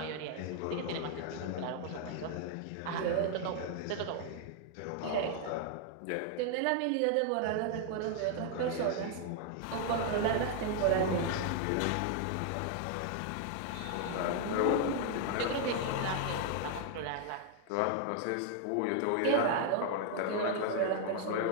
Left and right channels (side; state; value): both; different; correlation 0.00